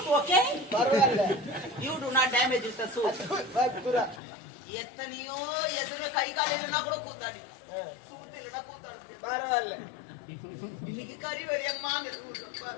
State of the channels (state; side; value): drops out; right; at 4.2 s